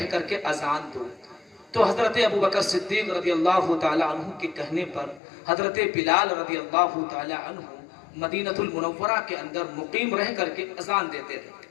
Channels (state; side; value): drops out; right; at 5.2 s